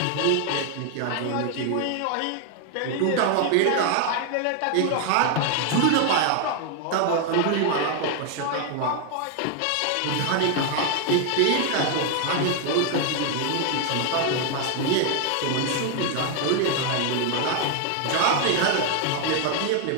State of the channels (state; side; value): different; both; correlation 0.01